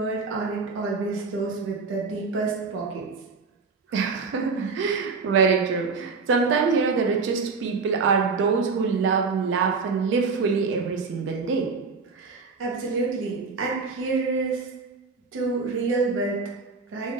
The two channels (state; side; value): quieter; left; 4.6 dB